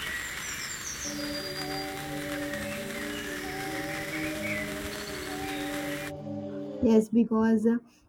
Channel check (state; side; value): identical; both; correlation 1.00